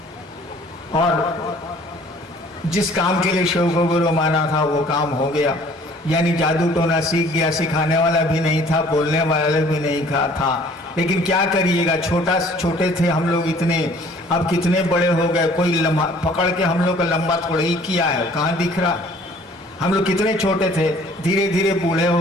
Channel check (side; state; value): both; normal; correlation 0.54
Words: और जिस काम के लिए शिव को गुरु माना था वो काम हो गया। यानी जादू टोना सीख गया, सिखाने वाला भी नहीं था, बोलने वाला भी नहीं था। लेकिन क्या करिएगा, छोटे थे हम लोग इतने, अब कितने बड़े हो गए, कोई पकड़ के हम लोग का लंबा थोड़ा ही किया है, कहाँ दिख रहा। हम लोग कितने छोटे थे, धीरे धीरे बूढ़े